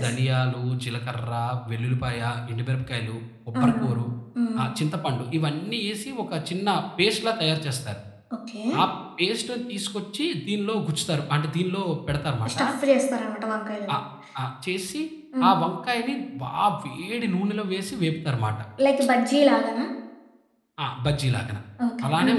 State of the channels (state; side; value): identical; both; correlation 1.00